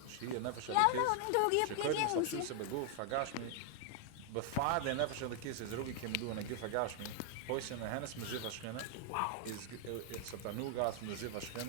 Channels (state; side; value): different; both; correlation 0.00